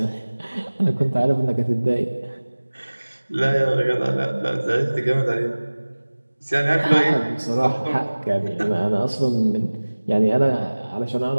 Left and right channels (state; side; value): inverted; both; correlation -1.00